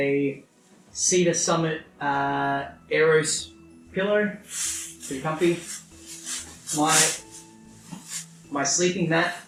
Cedar Summit Aeros pillow, pretty comfy. My sleeping mat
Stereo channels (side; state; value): both; identical; correlation 1.00